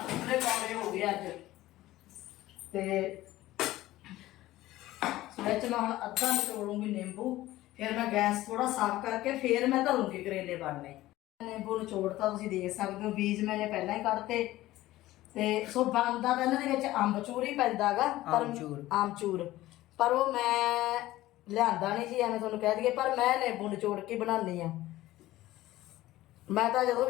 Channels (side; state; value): right; quieter; 16.3 dB